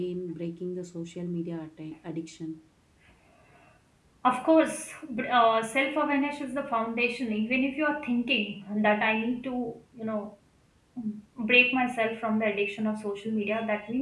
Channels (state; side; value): identical; both; correlation 1.00